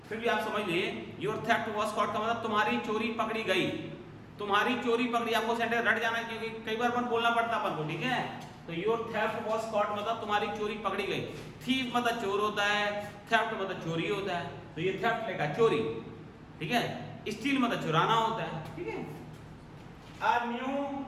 फिर भी आप समझ लीजिए, योर थेफ्ट वाज कॉट का मतलब तुम्हारी चोरी पकड़ी गई। तुम्हारी चोरी पकड़ी। आपको सेंटेंस रट जाना है क्योंकि कई बार अपन बोलना पड़ता है अपन को, ठीक है? तो योर थेफ्ट वाज कॉट मतलब तुम्हारी चोरी पकड़ी गई। थीफ मतलब चोर होता है, थेफ्ट मतलब चोरी होता है। तो ये थेफ्ट लेगा चोरी, ठीक है? स्टील मतलब चुराना होता है, ठीक है? A new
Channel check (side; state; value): both; identical; correlation 1.00